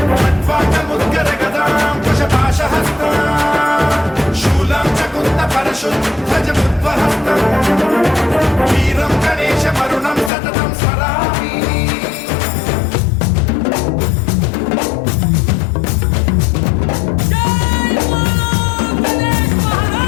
खड्वाङ्गमुद्गर गदां कुशपाशहस्तां शूलं च कुन्द परशुद्धजमुद्वहन्तम् वीरं गणेश वरुणं सततं स्मरामि।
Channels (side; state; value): right; drops out; at 10.3 s